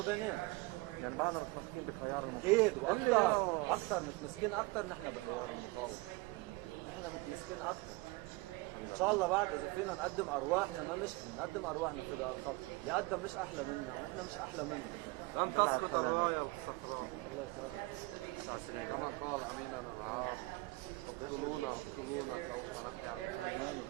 share our story with so many people, because it's like you all mentioned, it's slightly unique, and there's some lessons learned to it, and part of that is just resilience and being able to take a turn that was unexpected and make the best of it. And I think that is the biggest thing that I want to pass down, particularly to kids who think that their life should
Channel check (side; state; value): left; quieter; 23.3 dB